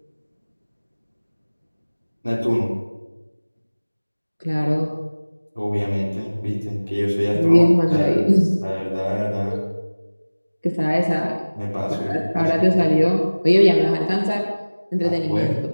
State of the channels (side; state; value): both; inverted; correlation -1.00